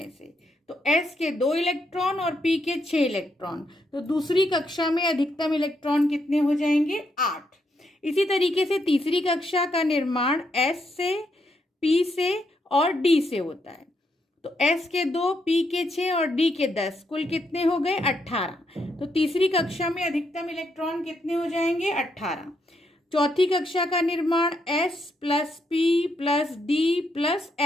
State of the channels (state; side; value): normal; both; correlation 0.78